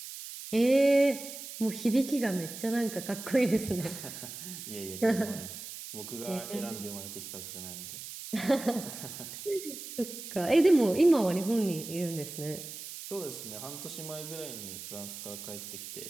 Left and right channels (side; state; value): right; noise; hiss, 10 dB below the sound